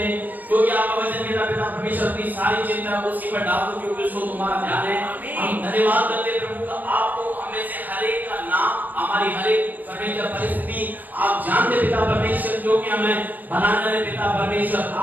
हैं क्योंकि आपका वचन कहता पिता परमेश्वर अपनी सारी चिंता उसी पर डाल दो क्योंकि उसको तुम्हारा ध्यान है। हम धन्यवाद करते प्रभु का, आपको हमें से हर एक का नाम, हमारी हर एक परमेश्वर परिस्थिति आप जानते पिता परमेश्वर, जो कि हमें बनाने वाले पिता परमेश्वर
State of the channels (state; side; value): late; left; 0.086 ms